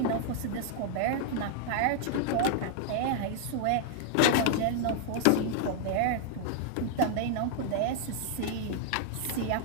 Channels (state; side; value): different; both; correlation 0.00